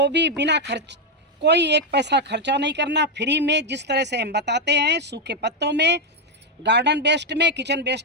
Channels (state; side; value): normal; both; correlation 0.03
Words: भी बिना खर्च, कोई एक पैसा खर्चा नहीं करना, फ्री में, जिस तरह से हम बताते हैं, सूखे पत्तों में, गार्डन वेस्ट में, किचन